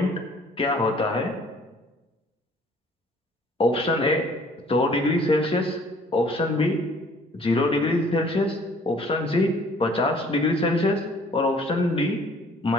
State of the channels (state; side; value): normal; both; correlation 0.56